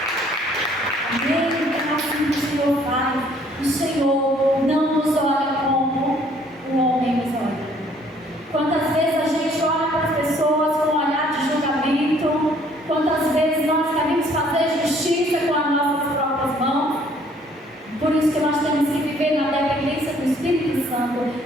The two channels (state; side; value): normal; both; correlation 0.61